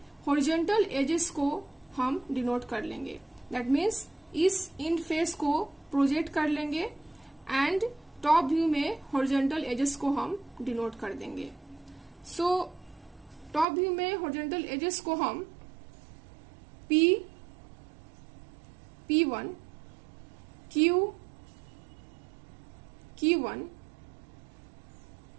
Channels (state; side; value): drops out; left; at 13.7 s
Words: हॉरिजॉन्टल एजेस को हम डिनोट कर लेंगे, दैट मीन्स इस इंड फेस को प्रोजेक्ट कर लेंगे एंड टॉप व्यू में हॉरिजॉन्टल एजेस को हम डिनोट कर देंगे। सो टॉप व्यू में हॉरिजॉन्टल एजेस को हम P1 Q1